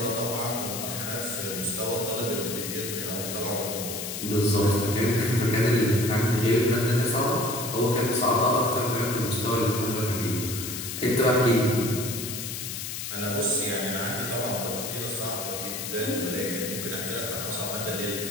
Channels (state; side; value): noise; left; hiss, 6 dB below the sound